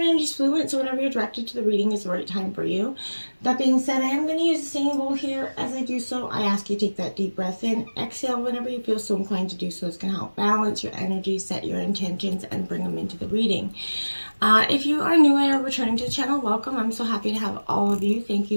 energy is fluid, so whenever you're directed to the reading is the right time for you. That being said, I am going to use the singing bowl here. As I do so, I ask you to take that deep breath in, exhale whenever you feel so inclined to do so. It's going to help balance your energy, set your intentions, and bring them into the reading. If you are new or returning to the channel, welcome. I'm so happy to have all of you. Thank you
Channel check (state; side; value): inverted; both; correlation -1.00